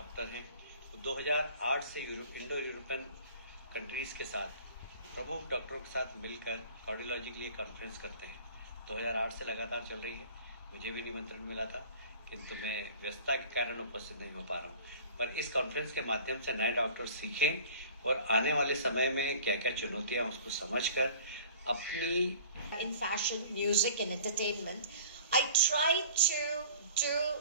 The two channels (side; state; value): both; inverted; correlation -0.46